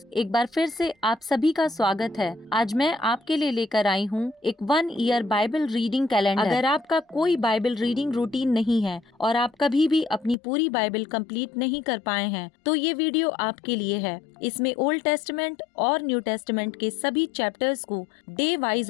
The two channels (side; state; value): right; drops out; at 10.4 s